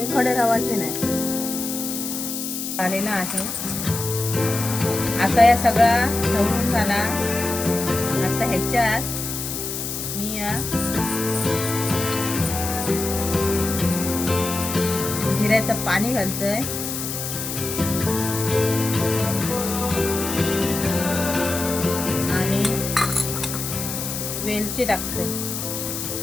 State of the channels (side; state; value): left; noise; hiss, 5 dB below the sound